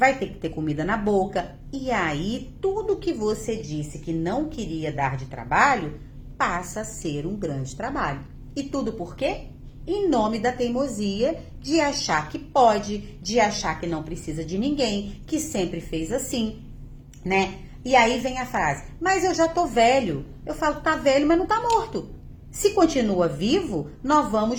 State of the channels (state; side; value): identical; both; correlation 1.00